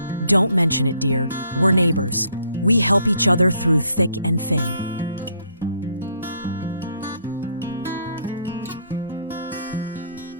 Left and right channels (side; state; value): both; inverted; correlation -0.67